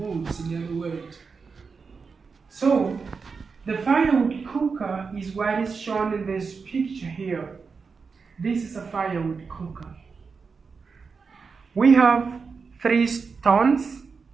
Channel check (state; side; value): quieter; left; 5.1 dB